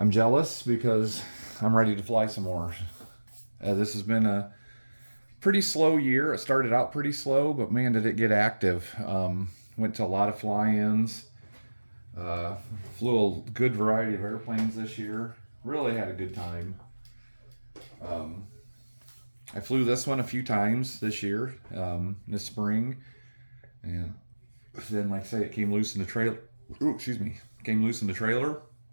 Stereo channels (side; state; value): both; inverted; correlation -1.00